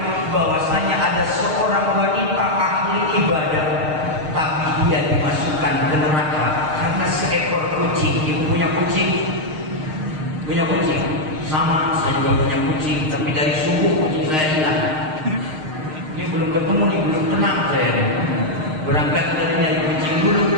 bahwasanya ada seorang wanita ahli ibadah, tapi dia dimasukkan ke neraka karena seekor kucing. Ibu punya kucing? Punya kucing? Sama, saya juga punya kucing, tapi dari subuh kucing saya hilang. Ini belum ketemu nih, belum tenang saya nih. Berangkat dari nyari kucing dulu.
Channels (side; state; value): left; late; 6.5 ms